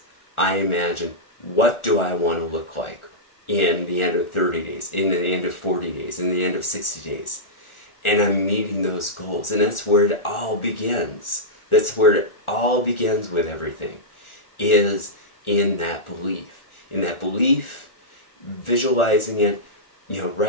I imagine, what do I want to look like in the end of 30 days, in the end of 40 days, in the end of 60 days. And I'm meeting those goals. And that's where it all begins. That's where it all begins with everything, is in that belief. In that belief, visualizing it, you know,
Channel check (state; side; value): late; right; 1.4 ms